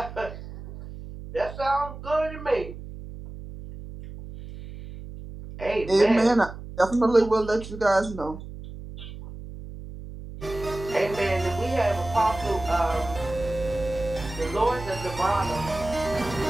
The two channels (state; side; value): noise; right; hum, 12 dB below the sound